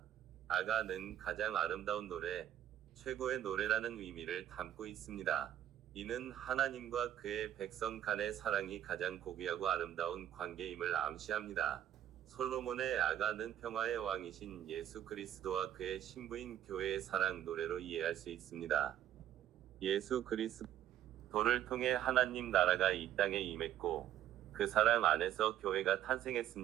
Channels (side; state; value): left; quieter; 11.3 dB